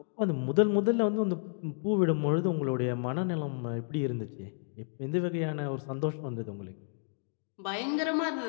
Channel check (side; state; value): right; silent; digital silence